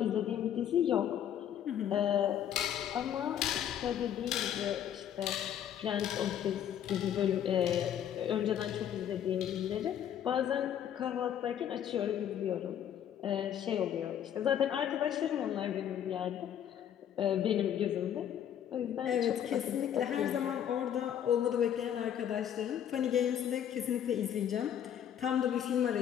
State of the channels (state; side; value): quieter; right; 9.8 dB